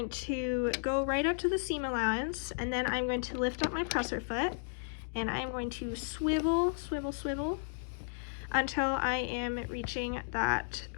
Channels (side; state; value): right; silent; digital silence